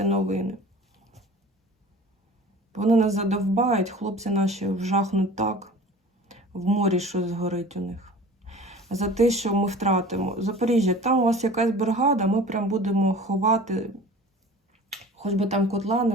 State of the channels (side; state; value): both; normal; correlation 0.41